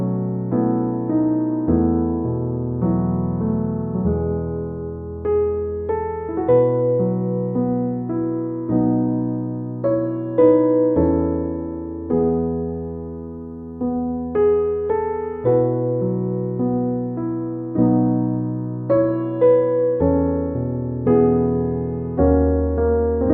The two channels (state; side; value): identical; both; correlation 1.00